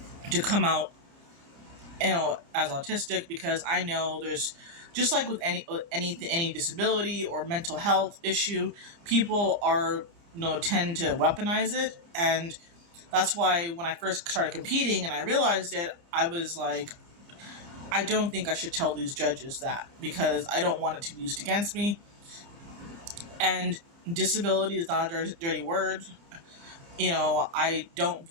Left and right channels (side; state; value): left; late; 29 ms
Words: to come out as autistic because I know there's just like with any disability or mental health issue, people are tend to weaponize it, and that's why when I first started competing and I realized it, I was like, I don't think I should tell these judges that because I don't want it to be used against me. And disability is not a dirty word. I don't